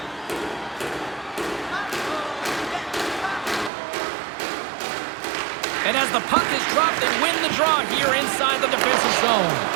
And as the puck is dropped, they win the draw here inside the defensive zone.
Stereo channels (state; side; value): drops out; left; at 3.7 s